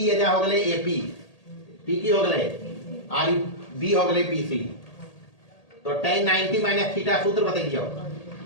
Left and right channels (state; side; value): late; right; 1.8 ms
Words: ये जा हो गए ap, p की हो गए और b हो गए pc, तो tan 90 माइनस थीटा सूत्र बताइए